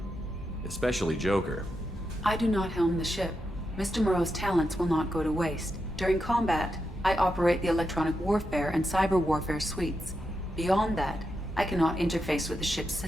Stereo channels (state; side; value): normal; both; correlation 0.86